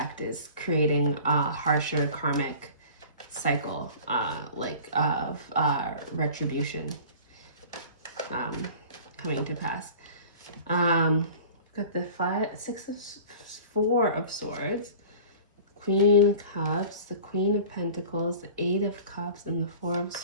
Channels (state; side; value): inverted; both; correlation -0.41